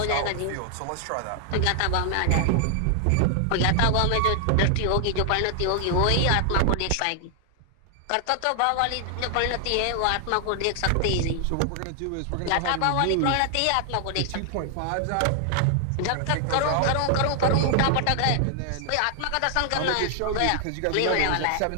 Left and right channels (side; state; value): both; different; correlation 0.00